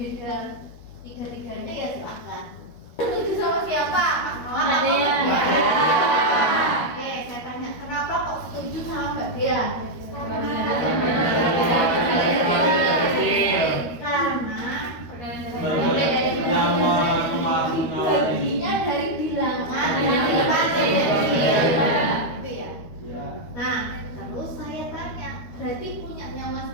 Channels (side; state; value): right; late; 13 ms